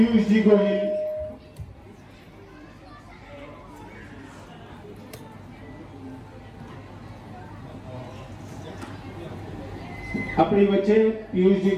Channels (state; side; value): identical; both; correlation 1.00